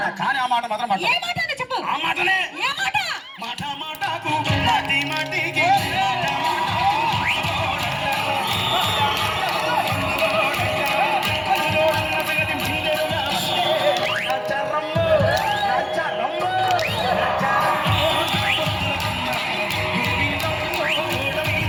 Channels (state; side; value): identical; both; correlation 1.00